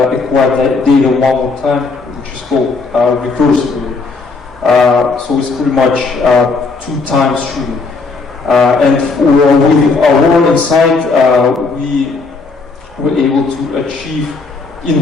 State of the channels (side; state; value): right; quieter; 4.1 dB